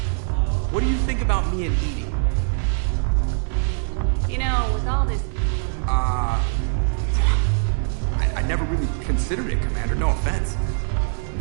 What do you think about me and Edie? You know, with all this... I never really considered it, Commander. No offense.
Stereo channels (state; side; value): silent; left; digital silence